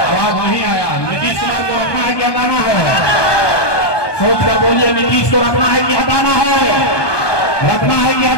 आवाज नहीं आया। नीतीश कुमार को रखना है कि हटाना है? सोच कर बोलिए, नीतीश को रखना है कि हटाना है? रखना है कि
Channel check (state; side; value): late; right; 1.2 ms